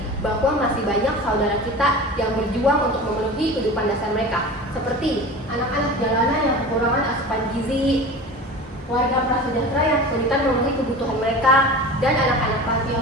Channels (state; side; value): normal; both; correlation 0.34